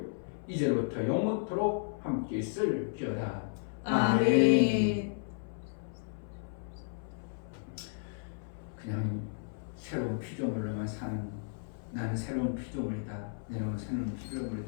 이제부터 영원토록 함께 있을지어다. 아멘. 그냥 새로운 피조물로만 사는 나는 새로운 피조물이다. 내는 새로운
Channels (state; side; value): silent; right; 55 dB below the other